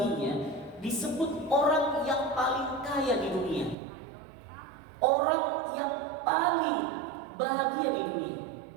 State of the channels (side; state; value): left; drops out; at 3.8 s